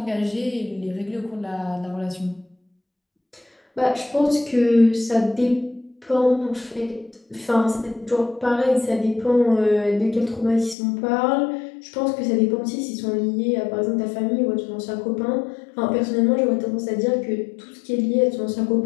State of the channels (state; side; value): drops out; right; at 10.8 s